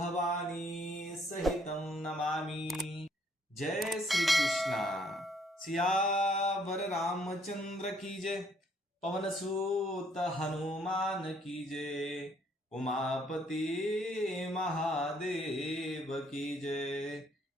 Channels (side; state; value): both; normal; correlation 0.66